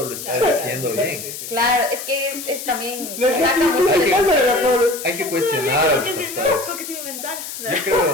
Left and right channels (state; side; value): noise; left; hiss, 9 dB below the sound